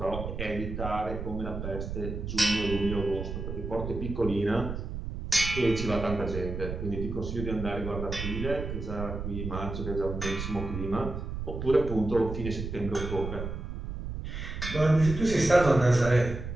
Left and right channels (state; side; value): noise; right; rumble, 6 dB below the sound